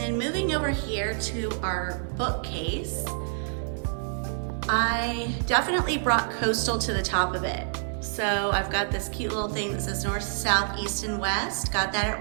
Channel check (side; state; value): left; silent; digital silence